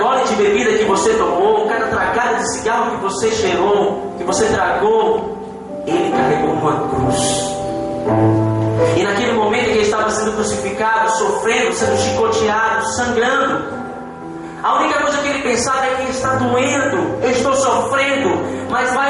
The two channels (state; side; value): identical; both; correlation 1.00